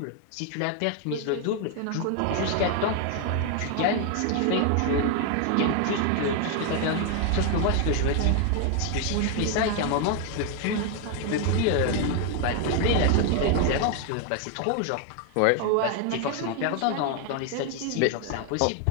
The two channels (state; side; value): different; both; correlation 0.00